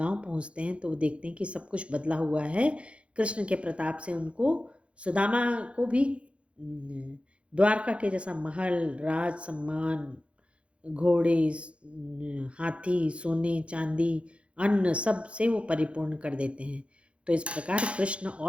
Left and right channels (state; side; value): late; left; 0.060 ms